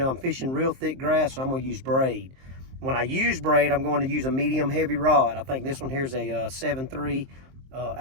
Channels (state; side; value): late; left; 23 ms